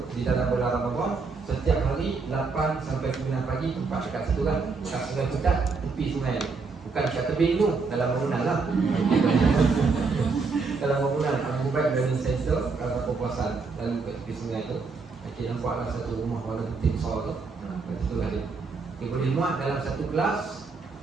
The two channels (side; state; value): left; quieter; 4.5 dB